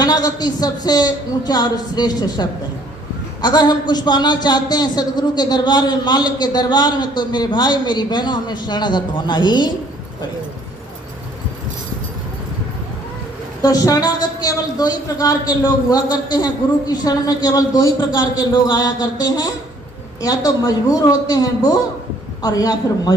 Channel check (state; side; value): normal; both; correlation 0.60